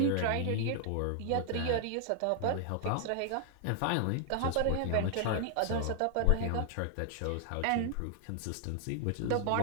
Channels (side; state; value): both; different; correlation 0.00